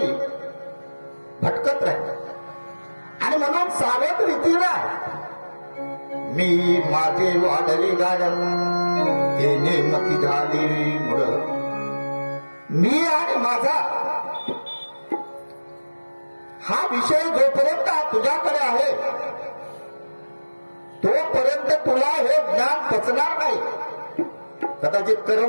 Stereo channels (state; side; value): inverted; both; correlation -1.00